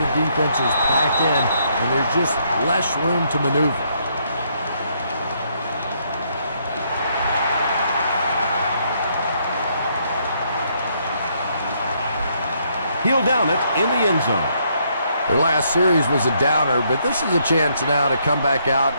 defense is packed in and there's just less room to maneuver. He'll down it in the end zone. Their last series was a downer, but this is a chance now to come back out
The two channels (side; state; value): both; inverted; correlation -0.72